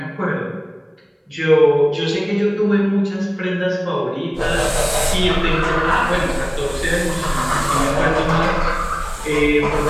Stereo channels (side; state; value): both; identical; correlation 1.00